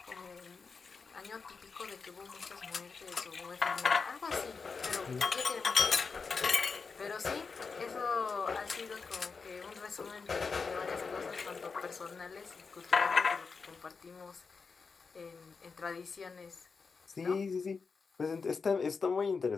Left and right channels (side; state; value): right; quieter; 4.9 dB